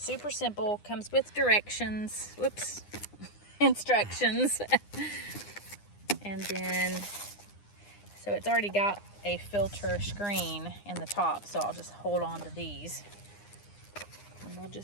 simple, comes with directions. Whoops, instructions. And then, so it's already got a filter screen in the top, so I'll just hold on to these. And we'll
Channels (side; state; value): right; late; 9.8 ms